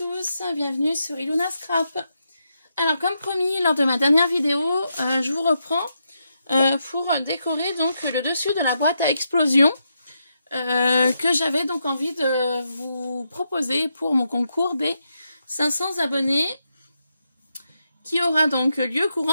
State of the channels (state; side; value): inverted; both; correlation -0.83